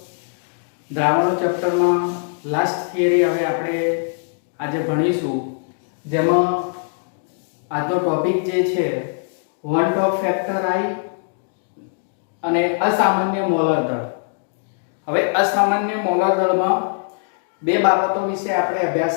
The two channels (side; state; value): right; silent; digital silence